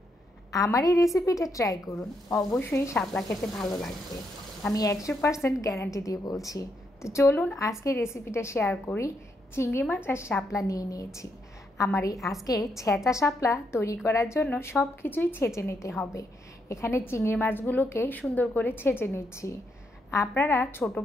আমার এই রেসিপিটা ট্রাই করুন, অবশ্যই শাপলা খেতে ভালো লাগবে। আমি 100% গ্যারান্টি দিয়ে বলছি। তো চলুন আজকে রেসিপিটা শেয়ার করি। চিংড়ি মাছ আর শাপলা নিয়ে নিয়েছি। আমার এই আজকে ছেঁচা শাপলা তৈরি করার জন্য সব কিছুই ছেঁচে নিতে হবে। এখানে চিংড়ি মাছগুলোকে সুন্দর করে ছেঁচে নিচ্ছি। আপনারা ছোট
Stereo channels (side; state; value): both; normal; correlation 0.78